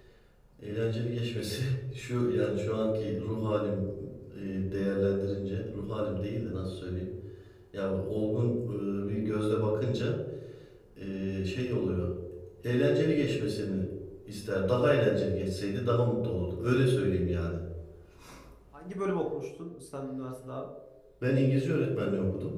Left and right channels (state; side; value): identical; both; correlation 1.00